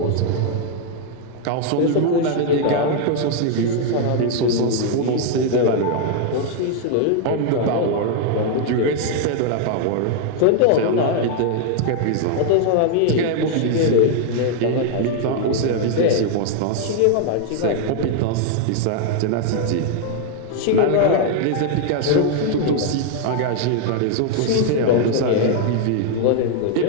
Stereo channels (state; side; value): different; both; correlation 0.00